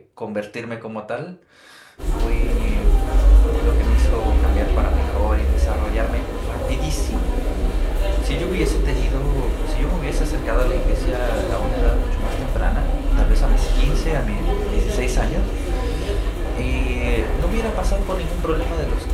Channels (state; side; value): identical; both; correlation 1.00